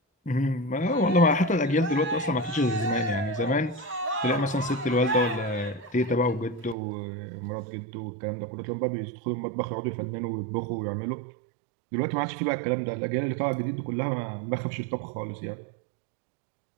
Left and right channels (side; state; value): left; drops out; at 6.8 s